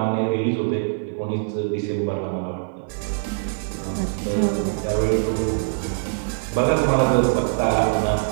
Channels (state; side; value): silent; left; 55 dB below the other